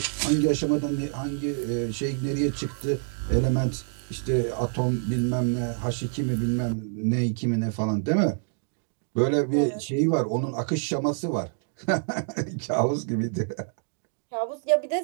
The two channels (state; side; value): silent; left; digital silence